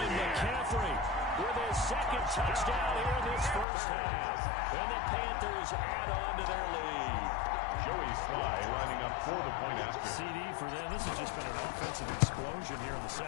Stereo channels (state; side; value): drops out; right; at 3.7 s